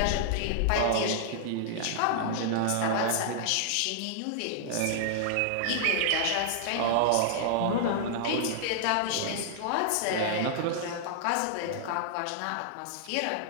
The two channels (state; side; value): different; both; correlation -0.01